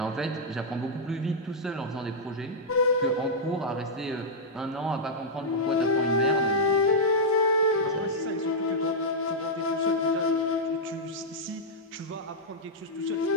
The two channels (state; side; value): normal; both; correlation -0.07